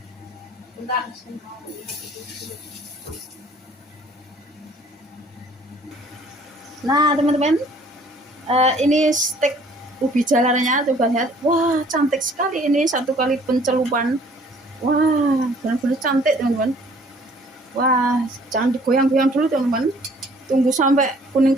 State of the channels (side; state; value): both; normal; correlation 0.56